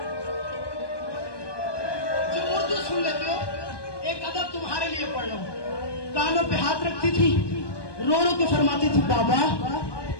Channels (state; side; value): late; right; 1.2 ms